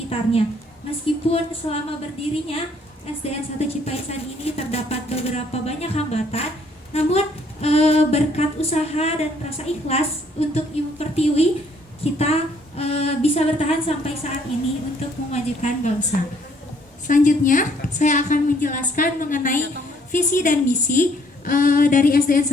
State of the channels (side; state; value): both; normal; correlation 0.64